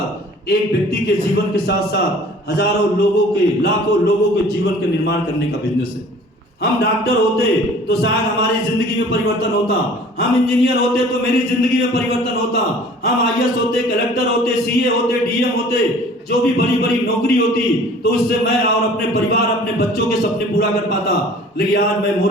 एक व्यक्ति के जीवन के साथ साथ हजारों लोगों के लाखों लोगों के जीवन का निर्माण करने का बिजनेस है। हम डॉक्टर होते तो शायद हमारी जिंदगी में परिवर्तन होता, हम इंजीनियर होते तो मेरी जिंदगी में परिवर्तन होता, हम आईएएस होते, कलेक्टर होते, सीए होते, डीएम होते, जो भी बड़ी बड़ी नौकरी होती तो उससे मैं और अपने परिवार अपने बच्चों के सपने पूरा कर पाता। लेकिन आज मैं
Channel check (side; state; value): both; normal; correlation 0.49